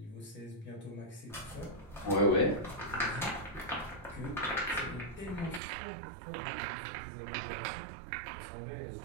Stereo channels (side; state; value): left; drops out; at 5.6 s